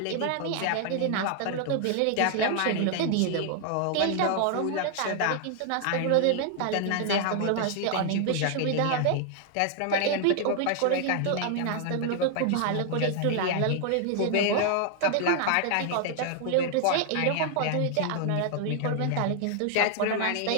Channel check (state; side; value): different; both; correlation 0.00